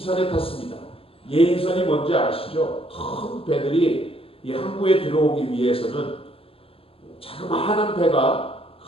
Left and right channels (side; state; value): right; late; 0.27 ms